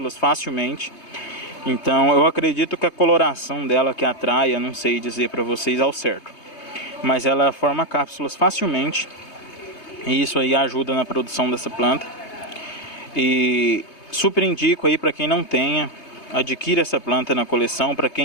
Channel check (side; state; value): right; late; 3.2 ms